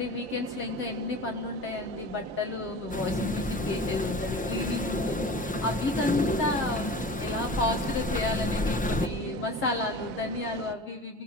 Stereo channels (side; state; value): both; normal; correlation 0.37